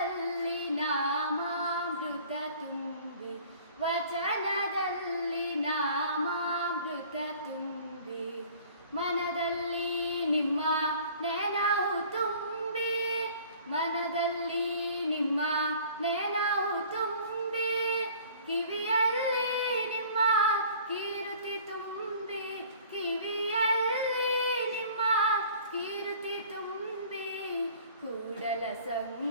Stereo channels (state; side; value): inverted; both; correlation -0.49